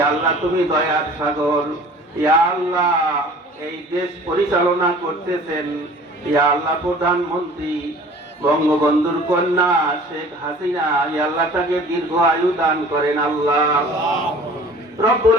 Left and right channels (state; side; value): normal; both; correlation 0.47